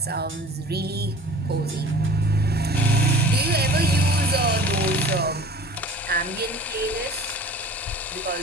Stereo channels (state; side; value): normal; both; correlation 0.44